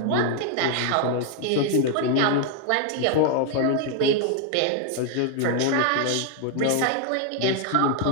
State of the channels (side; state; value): both; different; correlation 0.00